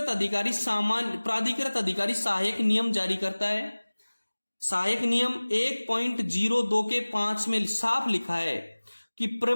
अधिकारी सहायक नियम जारी करता है। सहायक नियम 1.02 के 5 में साफ लिखा है कि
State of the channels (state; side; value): inverted; both; correlation -1.00